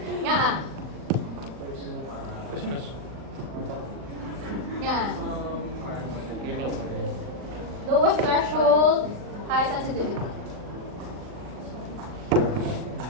Nga Poisonous. Yan. Lowest threshold, high sensitivity.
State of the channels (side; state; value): left; late; 39 ms